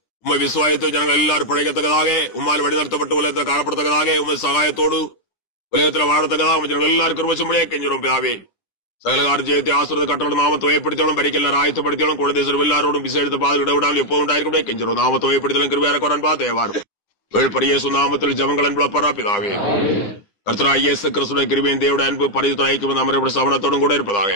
உண்மை விசுவாயத்தை ஜனங்கள் எல்லாரும் பிழைக்கத்தக்கதாக உம்மால் வழிநடத்தப்பட்டு உலகத்தில் காணப்படத்தக்கதாக உண்மை சகாயத்தோடு உலகத்தில் வாழத்தக்கதாக ஜனங்கள் எல்லாரும் கிருபையும்படியாக கெஞ்சுறோம் பிதாவே. சகல கால ஜெயத்தை ஆசிரியத்தை கட்டளட்டும் நாமத்தை ஏற்படுத்தலும் பறிக்க எல்லாரும் ஆயத்தப்படுத்தலும் குழந்தை எல்லாரோடும் விசேஷத்தை பாது விடவிடாமல் எப்போது உண்டாயிருக்கும் கெஞ்சுறோம். நாமத்தை ஏற்படுத்தலும் கிருபையாக குரான் பார்த்து ஏவாரும் வேழ்பரிய நாமத்தில் ஜபங்கள் என்பளப்பரா பிதாவே. கர்த்தராகிய இயேசு கிறிஸ்துவின் கிருபையின் தேவனுடைய அன்பு பரிசுத்த ஐக்கியம் நம்முடைய சமணத்தோடும் கூட இருப்பதாக.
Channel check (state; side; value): late; right; 9.9 ms